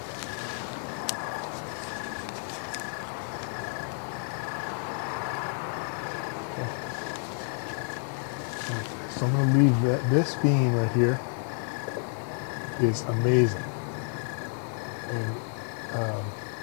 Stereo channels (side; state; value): right; silent; 57 dB below the other